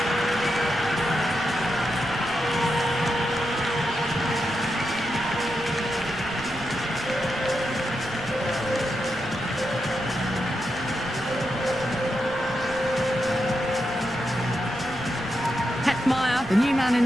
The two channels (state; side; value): noise; right; rumble, 16 dB below the sound